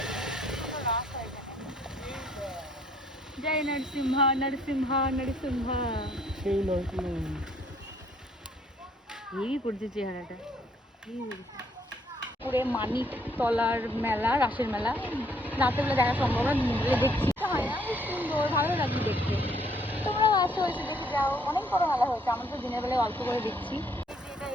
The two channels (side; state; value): both; normal; correlation 0.65